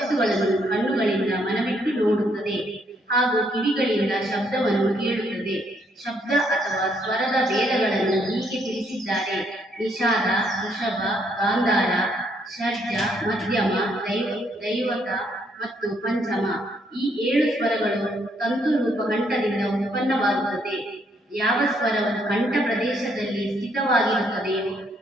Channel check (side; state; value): both; normal; correlation 0.71